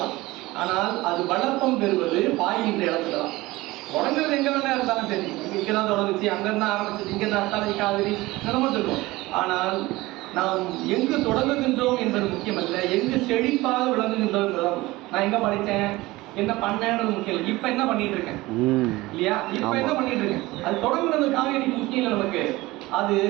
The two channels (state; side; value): quieter; left; 19.8 dB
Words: ஆனால் அது வளப்பம் பெறுவது பாய்கின்ற இடத்துல தான். தொடங்குறது எங்க வேணா இருந்தாலும் சரி, இங்கதான் தொடங்குச்சு, அங்கிருந்தா ஆரம்பிச்சது, இங்கதான் அத்தாலை காவிரி நிலமும் சொல்லுவோம். ஆனால் நாம் எங்கு தொடங்குகின்றோம் என்பது முக்கியமல்ல, எங்கு செழிப்பாக விளங்குகின்றோம் என்பதுதான். நான் எங்க படித்தேன், என்ன பண்ணேன்றது முக்கியம். இப்ப என்ன பண்ணிட்டு இருக்கேன் இல்லையா? இப்ப என்ன பண்ணிட்டு இருக்கேன், அது தொடங்குறது காவிரிக்கு முக்கியம் இல்லை நமக்கு. அது